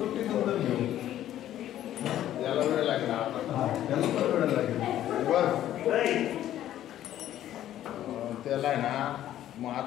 नंतर घेऊ. याला वेळ लागला. त्याला पण वेळ लागेल. त्याला आहे ना. मग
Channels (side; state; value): right; quieter; 12.3 dB